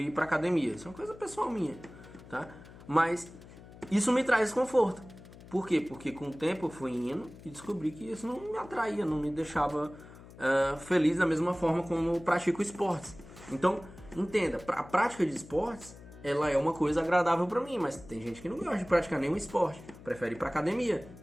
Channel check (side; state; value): left; noise; hum, 19 dB below the sound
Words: pra academia. Isso é uma coisa pessoal minha, tá? Mas isso me traz desconforto. Por quê? Porque com o tempo eu fui indo e descobri que isso não me atraía, não me deixava feliz da mesma forma como eu pratico esportes. Então, entenda, a prática de esportes, ela é uma coisa agradável pra mim, mas tem gente que não gosta de praticar nenhum esporte, prefere ir pra academia.